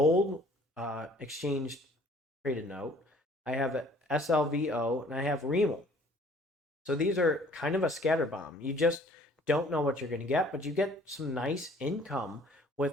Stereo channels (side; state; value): both; normal; correlation 0.55